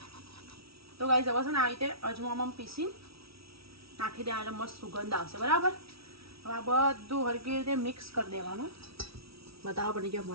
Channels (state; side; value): late; left; 0.76 ms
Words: તો ગાઈસ હવે છે ને આવી રીતે અજમામાં પીસી નાખી દેવા એટલે મસ્ત સુગંધ આવશે બરાબર. હવે આ બધું હરકી રીતે મિક્સ કરી દેવાનું. બતાવવા પડી ગયો